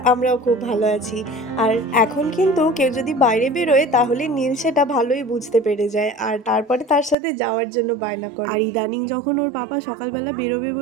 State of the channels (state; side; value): drops out; left; at 7.2 s